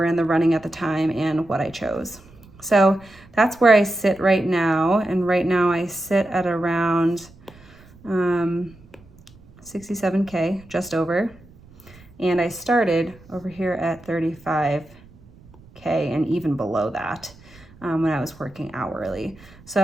in the running at the time, and what I chose. So that's where I sit right now. And right now I sit at around 67K, just over. And I started over here at 35K and even below that when I was working hourly.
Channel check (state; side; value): noise; right; rumble, 24 dB below the sound